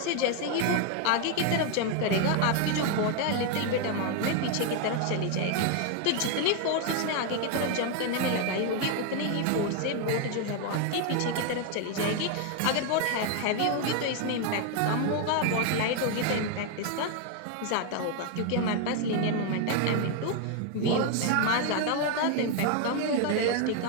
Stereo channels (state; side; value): different; both; correlation 0.01